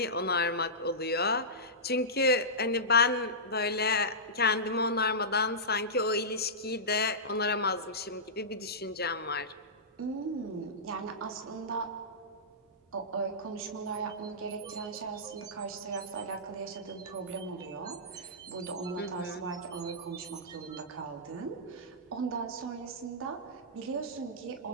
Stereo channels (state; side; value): normal; both; correlation -0.16